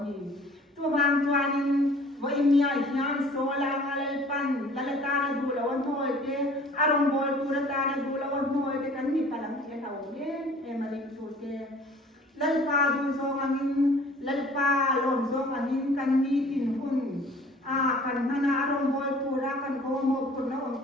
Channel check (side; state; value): both; normal; correlation 0.50